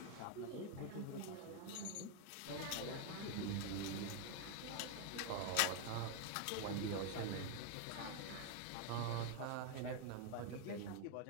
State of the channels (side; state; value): both; different; correlation 0.01